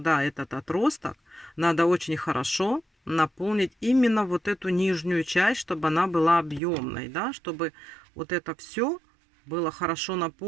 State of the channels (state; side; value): drops out; left; at 6.6 s